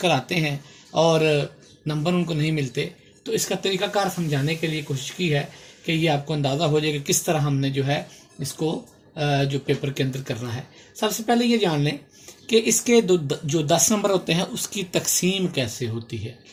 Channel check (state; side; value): identical; both; correlation 1.00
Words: آتے ہیں اور نمبر ان کو نہیں ملتے۔ تو اس کا طریقہ کار سمجھانے کے لیے کوشش کی ہے کہ یہ آپ کو اندازہ ہو جائے کہ کس طرح ہم نے جو ہے اس کو جو پیپر کے اندر کرنا ہے۔ سب سے پہلے یہ جان لیں کہ اس کے جو 10 نمبر ہوتے ہیں اس کی تقسیم کیسے ہوتی ہے۔